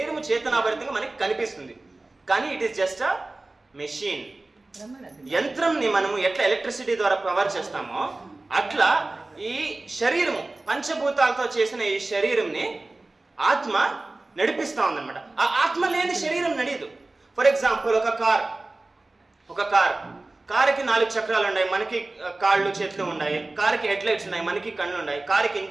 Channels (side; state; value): left; quieter; 3.0 dB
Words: చేతనాభరితంగా మనకి కనిపిస్తుంది. కానీ it is just a machine. యంత్రంని మనము ఎట్లా ఎలక్ట్రిసిటీ ద్వారా పవర్ చేస్తామో అట్లా ఈ శరీరము పంచభూతాలతో చేసిన ఈ శరీరంని ఆత్మ నడిపిస్తా ఉందన్నమాట. ఆ ఆత్మ లేని శరీరం నడియదు. ఫర్ ఎగ్జాంపుల్ ఒక కారుకి 4 చక్రాలు ఉన్నాయి, మనకి కాళ్ళు చేతులు ఉన్నాయి. కారుకి హెడ్ లైట్స్ ఉన్నాయి, మనకి కళ్ళు ఉన్నాయి. కారుకి